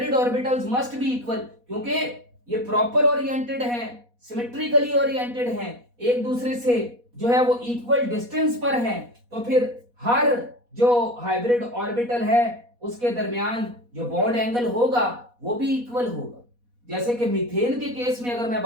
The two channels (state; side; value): late; left; 4.1 ms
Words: orbitals must be equal, क्योंकि ये प्रॉपर ओरिएंटेड हैं, सिमेट्रिकली ओरिएंटेड हैं, एक दूसरे से जो है वो इक्वल डिस्टेंस पर हैं, तो फिर हर जो हाइब्रिड ऑर्बिटल है उसके दरमियान जो बॉन्ड एंगल होगा वो भी इक्वल होगा। जैसे कि मीथेन के केस में अगर मैं